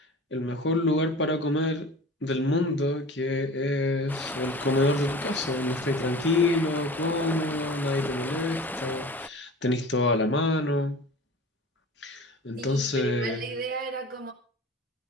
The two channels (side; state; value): both; normal; correlation 0.39